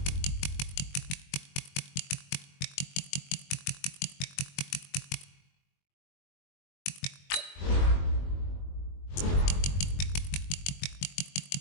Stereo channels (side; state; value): right; late; 21 ms